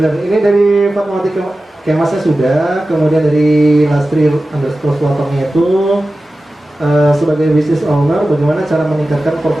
Ini dari Fatmawati Kemasnya sudah, kemudian dari Lastri _Swatongnya itu sebagai business owner, bagaimana cara meningkatkan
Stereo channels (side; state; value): both; normal; correlation 0.95